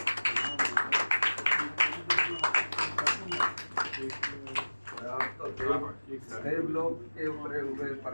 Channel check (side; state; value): both; inverted; correlation -1.00